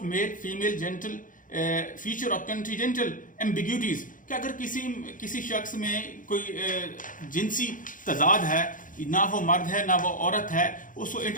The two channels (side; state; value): right; late; 0.39 ms